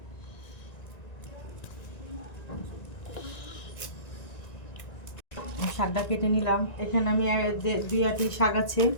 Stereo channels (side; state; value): right; late; 1.9 ms